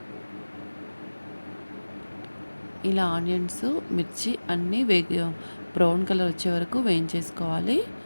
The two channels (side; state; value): both; inverted; correlation -1.00